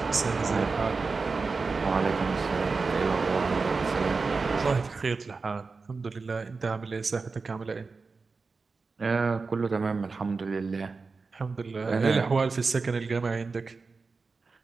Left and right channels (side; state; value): left; quieter; 4.3 dB